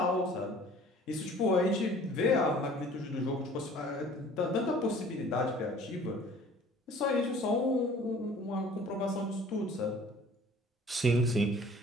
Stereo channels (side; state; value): both; normal; correlation 0.49